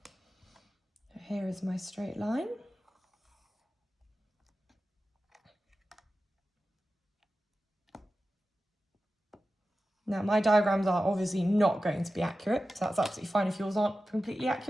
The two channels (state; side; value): normal; both; correlation 0.93